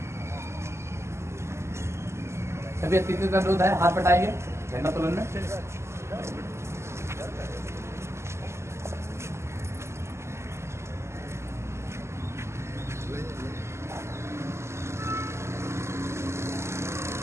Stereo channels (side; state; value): left; late; 0.13 ms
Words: सभी अतिथियों का अनुरोध है हाथ बटाएंगे झंडा तोलन में।